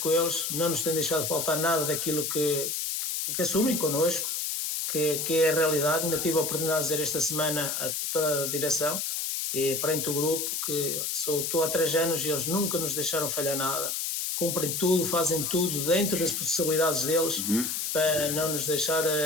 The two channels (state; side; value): noise; left; hiss, 1 dB below the sound